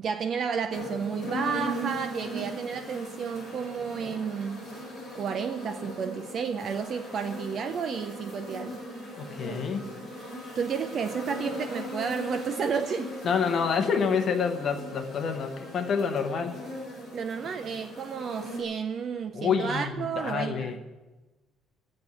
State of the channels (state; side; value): normal; both; correlation 0.64